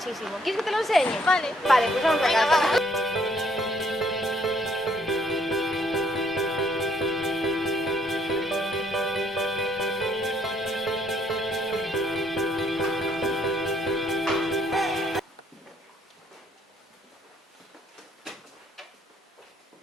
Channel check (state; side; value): normal; both; correlation 0.67